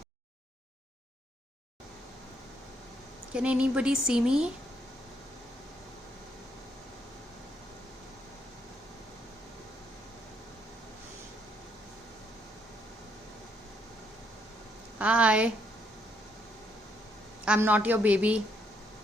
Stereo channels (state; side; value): normal; both; correlation 0.72